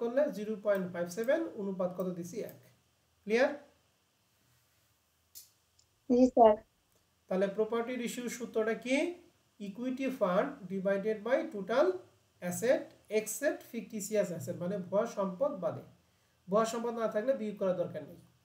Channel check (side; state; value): both; identical; correlation 1.00